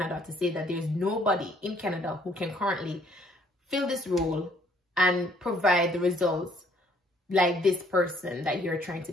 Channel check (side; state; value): both; normal; correlation 0.63